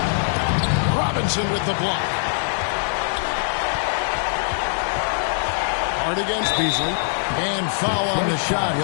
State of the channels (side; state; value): right; silent; digital silence